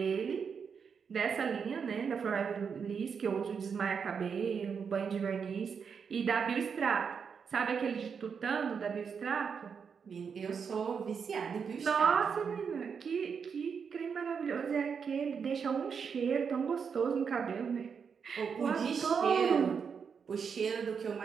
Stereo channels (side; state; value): left; quieter; 6.3 dB